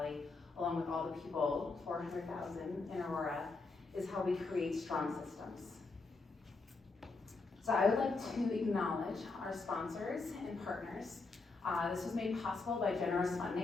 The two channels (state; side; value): quieter; right; 3.8 dB